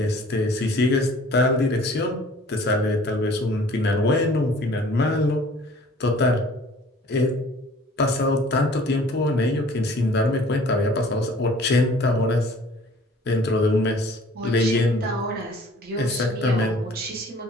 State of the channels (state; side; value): normal; both; correlation 0.51